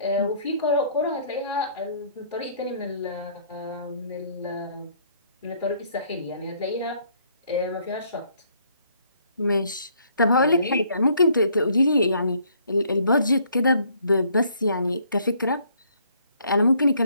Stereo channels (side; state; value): both; inverted; correlation -0.64